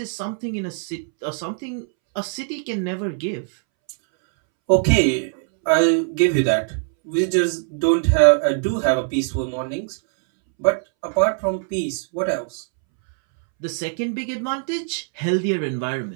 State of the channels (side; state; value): left; silent; 64 dB below the other